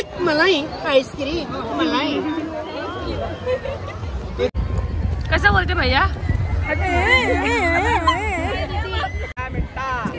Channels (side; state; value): both; identical; correlation 1.00